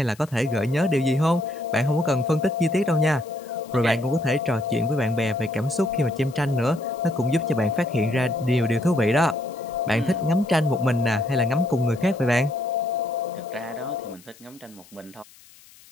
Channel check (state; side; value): noise; left; hiss, 25 dB below the sound